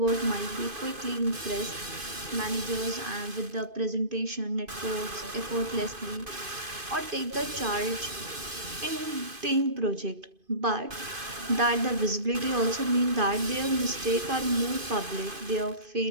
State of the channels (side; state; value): left; late; 2.5 ms